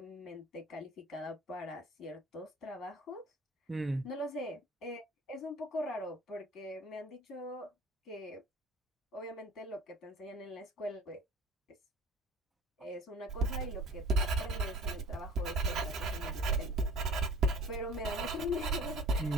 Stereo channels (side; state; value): both; normal; correlation 0.45